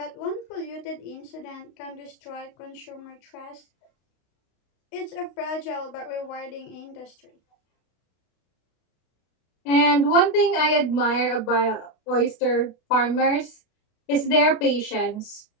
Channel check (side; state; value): right; late; 32 ms